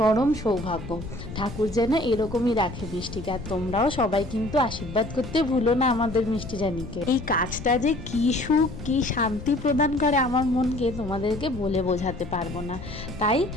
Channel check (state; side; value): noise; left; rumble, 11 dB below the sound